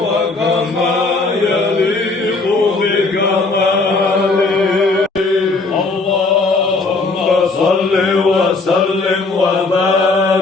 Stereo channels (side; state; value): right; quieter; 3.6 dB